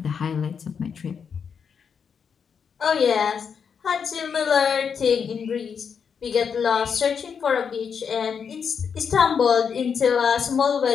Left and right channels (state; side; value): quieter; right; 6.7 dB